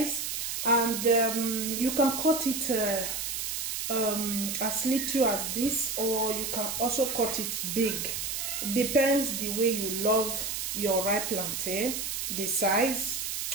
and you can cut it as little as this, or you can also cut it big. Depends the way you love your ripe plantain, the size.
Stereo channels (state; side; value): noise; right; hiss, 3 dB below the sound